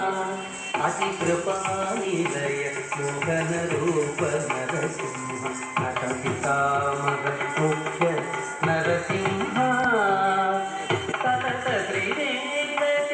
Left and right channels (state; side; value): identical; both; correlation 1.00